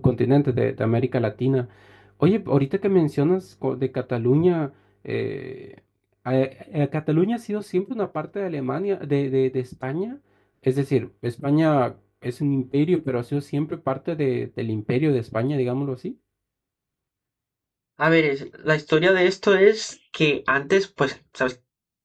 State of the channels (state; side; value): identical; both; correlation 1.00